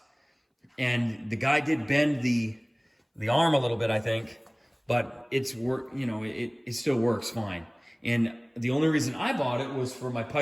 And the guy did bend the arm a little bit, I think, but it still works fine. And the only reason I bought it was for my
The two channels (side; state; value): both; identical; correlation 1.00